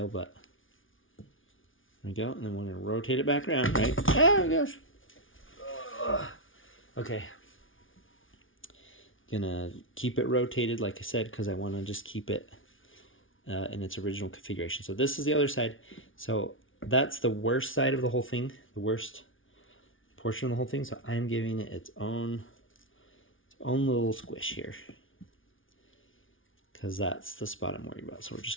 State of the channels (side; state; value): right; late; 0.57 ms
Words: but there we go. And then we're gonna rotate it back around, right? Oh gosh. Okay. Gonna keep it rotated, like I said, because I want to just keep it in its original configuration. So this is the other side. So that's the worst side of the whole thing, the worst portion of the whole thing. So I'm giving it its own little squish here, because that's the spot I'm worried about. So we're